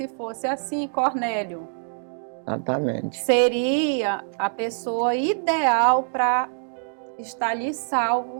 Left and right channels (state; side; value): silent; left; digital silence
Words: fosse assim, Cornélio, exatamente, seria a pessoa ideal para estar ali